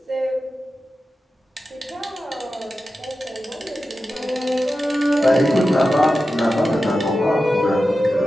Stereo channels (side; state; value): both; normal; correlation 0.92